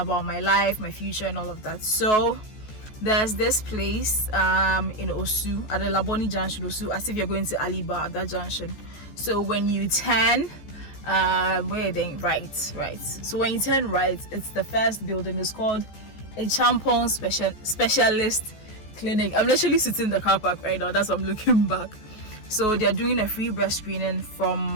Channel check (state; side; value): late; right; 14 ms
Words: my life, my future and all of that. So there's this place in Osu, at the Laboni Junction, Osu, as if you're going to Aliba at that junction. So when you turn where are they? Right. So when you turn right, it's the first building. It's called a Champon Specialist Clinic. I'm literally sitting in the car park right now. That's why I'm looking back. So they're doing a free breast screening